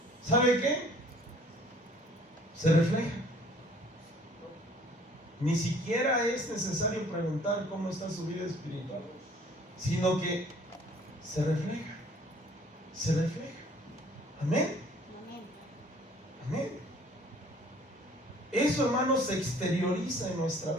¿sabe qué? Se refleja. Ni siquiera es necesario preguntar cómo está su vida espiritual, sino que se refleja. Se refleja. Amén. Amén. Eso, hermanos, se exterioriza en nuestra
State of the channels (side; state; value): both; normal; correlation 0.55